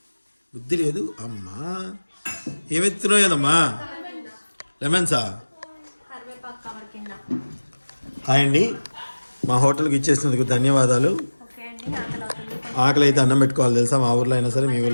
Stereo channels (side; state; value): both; inverted; correlation -1.00